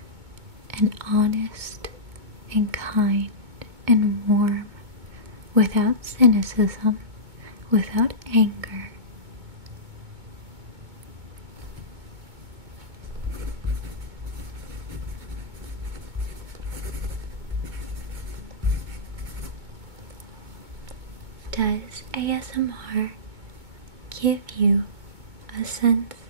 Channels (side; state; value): left; late; 2.2 ms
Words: and honest and kind and warm, without cynicism, without anger? Does ASMR give you a sense